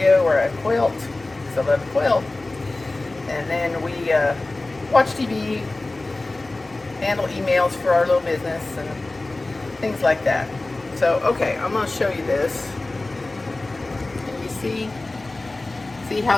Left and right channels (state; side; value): quieter; right; 3.0 dB